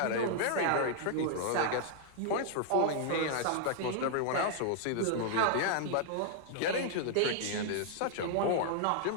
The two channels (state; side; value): different; both; correlation 0.00